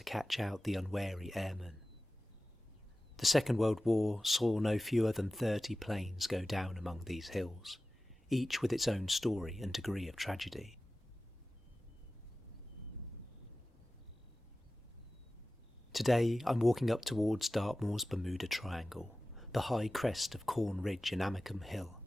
catch out the unwary airmen. The Second World War saw no fewer than 30 planes go down among these hills, each with its own story and degree of tragedy. Today I'm walking up towards Dartmoor's Bermuda Triangle, the high crest of Corn Ridge and Amicombe Hill,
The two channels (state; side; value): normal; both; correlation 0.95